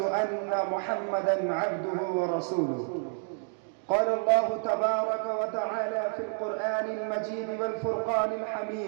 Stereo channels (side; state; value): left; silent; 56 dB below the other